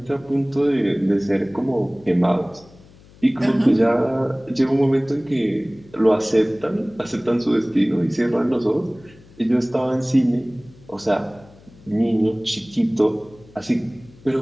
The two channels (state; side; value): noise; left; hum, 25 dB below the sound